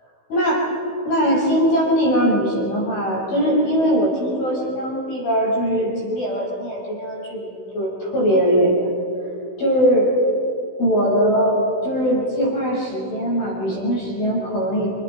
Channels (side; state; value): right; late; 16 ms